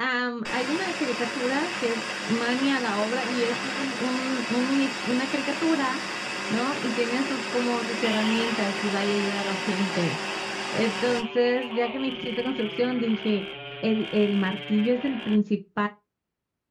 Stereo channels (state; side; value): identical; both; correlation 1.00